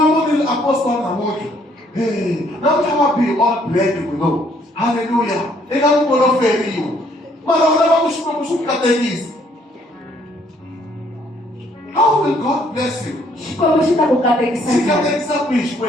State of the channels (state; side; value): normal; both; correlation 0.65